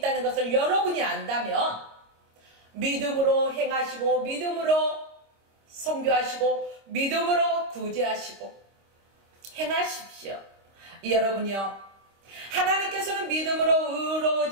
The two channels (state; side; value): late; left; 26 ms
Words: 것을 여러분이 안다면 믿음으로 행하시고 믿음으로 선교하시고 믿음으로 구제하시고 행하십시오. 여러분이요, 하나님께서는 믿음으로